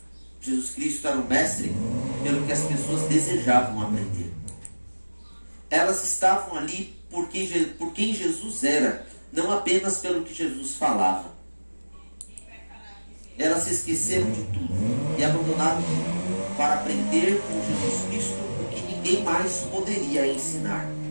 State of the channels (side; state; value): both; inverted; correlation -1.00